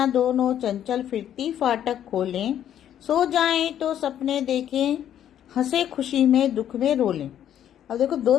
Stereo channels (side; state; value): right; quieter; 10.5 dB